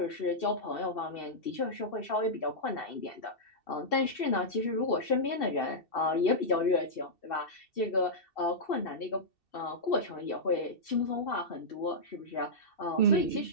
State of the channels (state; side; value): late; right; 2.7 ms